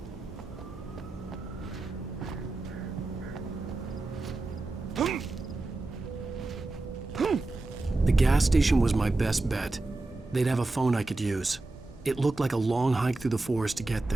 gas station was my best bet. They'd have a phone I could use. It looked like a long hike through the forest to get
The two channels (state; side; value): quieter; left; 3.1 dB